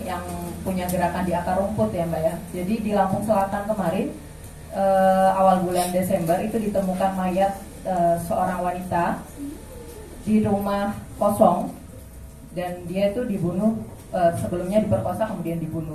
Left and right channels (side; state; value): both; identical; correlation 1.00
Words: yang punya gerakan di akar rumput ya Mbak ya. Jadi di Lampung Selatan kemarin awal bulan Desember itu ditemukan mayat seorang wanita di rumah kosong dan dia itu dibunuh, sebelumnya diperkosa kemudian